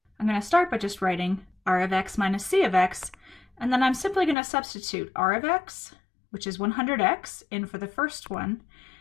I'm going to start by just writing r of x minus c of x, and then I'm simply going to substitute r of x, which is 100x, in for the first one,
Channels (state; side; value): drops out; right; at 4.4 s